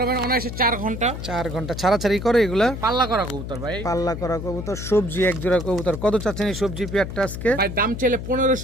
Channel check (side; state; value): left; noise; hum, 7 dB below the sound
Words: অনায়াসে 4 ঘন্টা। 4 ঘন্টা ছাড়াছাড়ি করে এগুলা। পাল্লা করা কবুতর ভাই। পাল্লা করা কবুতর, সবজি এক জোড়া কবুতর। কত চাচ্ছেন এই সবজি পেয়ারটা আজকে? ভাই দাম চাইলে